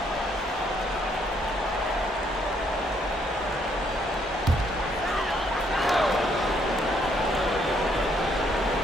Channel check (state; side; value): normal; both; correlation 0.70